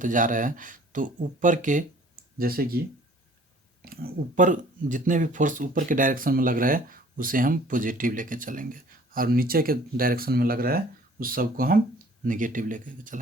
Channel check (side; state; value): both; normal; correlation 0.53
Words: जा रहे हैं तो ऊपर के, जैसे कि ऊपर जितने भी फोर्स ऊपर के डायरेक्शन में लग रहा है उसे हम पॉजिटिव लेके चलेंगे, और नीचे के डायरेक्शन में लग रहा है उस सब को हम नेगेटिव लेके